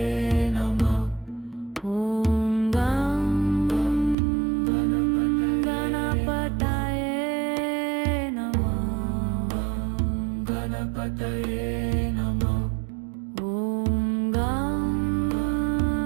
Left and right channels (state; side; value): drops out; left; at 4.2 s